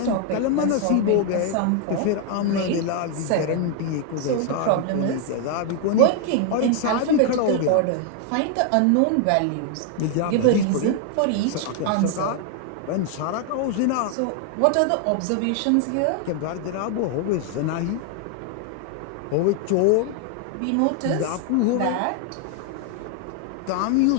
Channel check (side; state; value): both; different; correlation 0.00